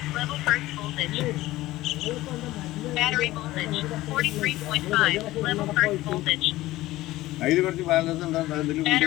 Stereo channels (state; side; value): quieter; right; 17.0 dB